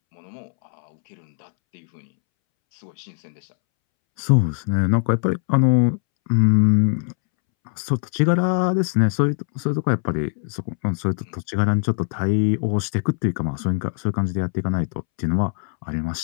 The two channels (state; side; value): silent; right; 64 dB below the other